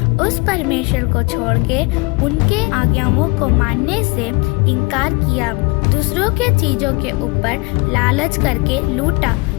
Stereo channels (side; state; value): right; quieter; 27.0 dB